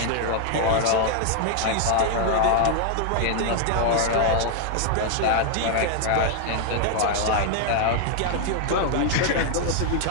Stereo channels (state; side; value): different; both; correlation 0.00